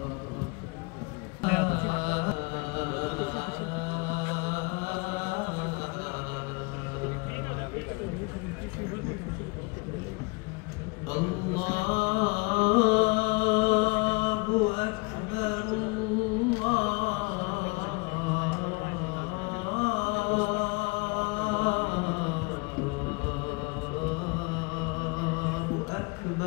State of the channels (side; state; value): right; quieter; 29.2 dB